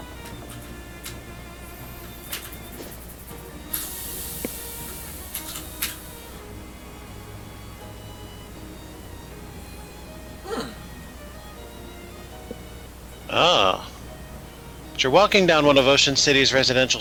Ah. As you're walking down one of Ocean City's residential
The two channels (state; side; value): identical; both; correlation 1.00